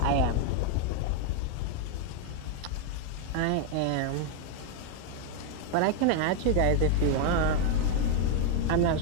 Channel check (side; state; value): both; different; correlation 0.01